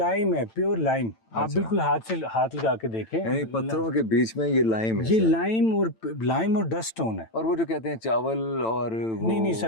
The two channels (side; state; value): right; late; 9.0 ms